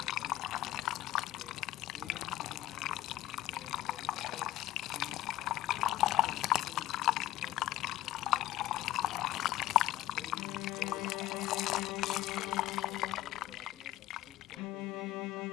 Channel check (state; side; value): quieter; right; 15.2 dB